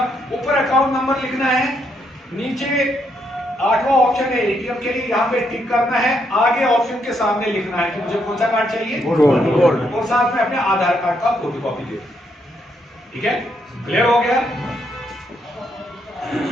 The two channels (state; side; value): normal; both; correlation 0.76